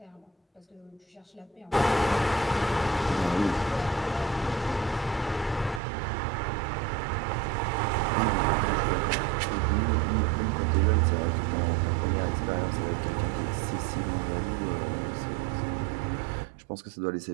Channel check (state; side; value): drops out; left; at 5.8 s